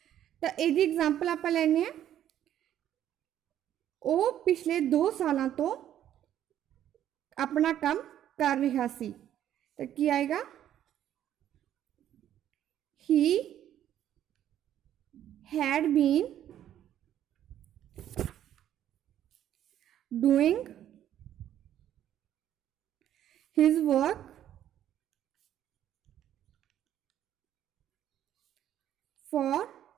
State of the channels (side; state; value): left; quieter; 11.2 dB